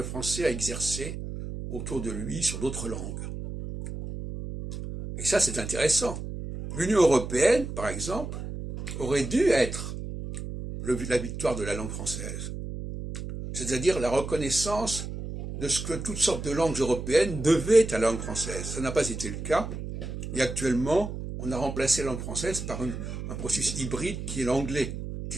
français a exercée autour de lui sur d'autres langues. Et ça, c'est intéressant. L'Union européenne, par exemple, aurait dû être la victoire de la langue française. C'est-à-dire la reconnaissance de ce que toutes sortes de langues européennes devaient à la langue française. Ça n'a pas été le cas. Et actuellement, on a remplacé la langue française par un processus hybride qui est l'anglais,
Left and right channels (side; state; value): right; noise; hum, 7 dB below the sound